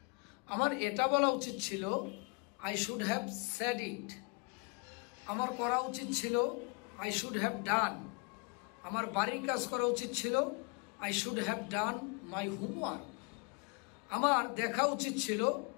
আমার এটা বলা উচিত ছিল I should have said it. আমার করা উচিত ছিল আই শুড হ্যাভ ডান। আমার বাড়ির কাজ করা উচিত ছিল I should have done my homework. আমার দেখা উচিত ছিল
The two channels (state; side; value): quieter; right; 32.2 dB